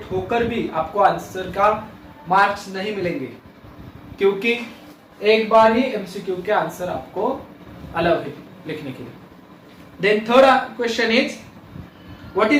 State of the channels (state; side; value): identical; both; correlation 1.00